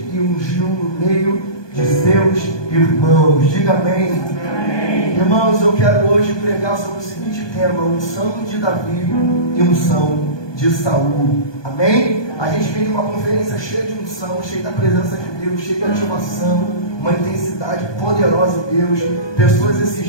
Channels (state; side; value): late; right; 1.2 ms